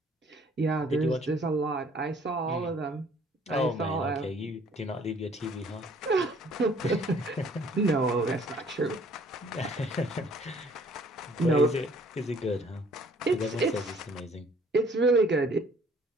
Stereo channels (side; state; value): both; normal; correlation 0.58